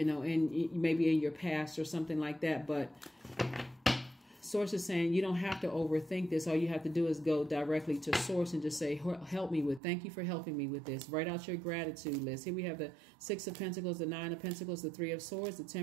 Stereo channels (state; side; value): drops out; left; at 9.8 s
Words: maybe in your past or something like that. But Source is saying you don't have to overthink this. All you have to do is go directly to Source and just say, thank you for helping me with this. Write out your gratitude list. Here we have the Six of Pentacles, the Nine of Pentacles, the Three of Swords, the